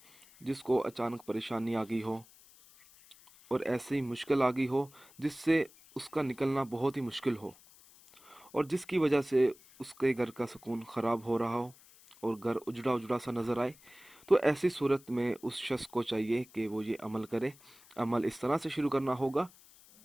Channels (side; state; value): left; noise; hiss, 24 dB below the sound